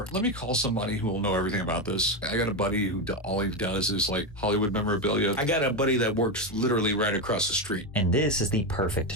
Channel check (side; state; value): both; normal; correlation 0.12